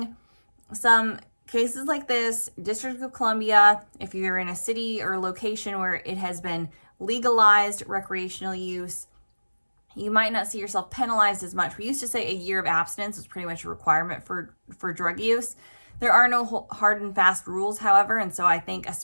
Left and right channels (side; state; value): both; inverted; correlation -1.00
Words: some cases like this, District of Columbia, if you're in a city or location where it has been legalized recreational use, you might not see yourself penalized as much. We used to say a year of abstinence was pretty much a requirement for drug use. There are no hard and fast rules, however, and so I think